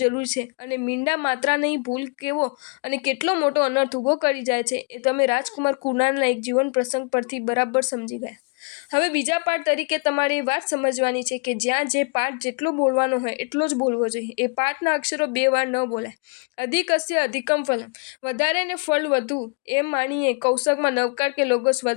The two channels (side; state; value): right; quieter; 36.7 dB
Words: છે અને મીંડા માત્રાની ભૂલ કેવો અને કેટલો મોટો અનર્થ ઊભો કરી જાય છે એ તમે રાજકુમાર કુણાલના એક જીવન પ્રસંગ પરથી બરાબર સમજી ગયા. હવે બીજા પાઠ તરીકે તમારે એ વાત સમજવાની છે કે જ્યાં જે પાઠ જેટલો બોલવાનો હોય એટલો જ બોલવો જોઈએ. એ પાઠના અક્ષરો 2 વાર ન બોલાય. અધિકસ્ય અધિકમ ફલમ. વધારે ને ફળ વધુ એમ માનીએ કૌશકમાં નવકાર કે લોગોસ